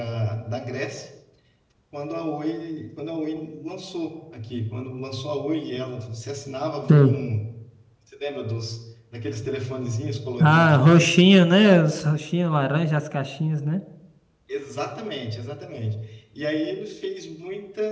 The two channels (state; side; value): identical; both; correlation 1.00